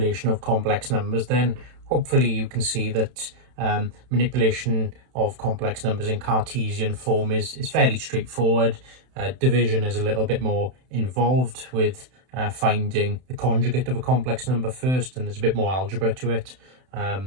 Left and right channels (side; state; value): left; late; 31 ms